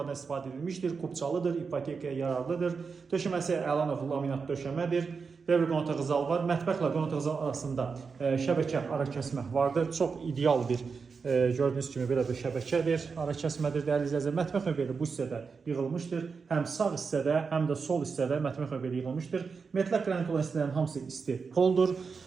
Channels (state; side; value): quieter; left; 5.2 dB